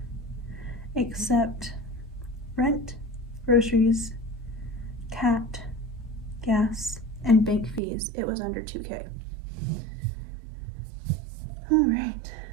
except rent, groceries, cat, gas, and bank fees, it was under 2K. All right,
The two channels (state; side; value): drops out; left; at 7.8 s